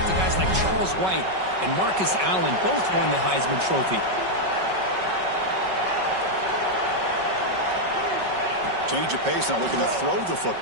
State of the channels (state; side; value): late; left; 5.3 ms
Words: to guys like Charles White and Marcus Allen, both won the Heisman Trophy. Change of pace now, looking to throw the